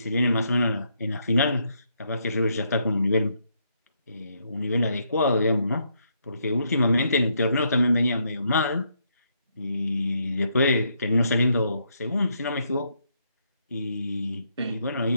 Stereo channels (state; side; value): inverted; both; correlation -0.76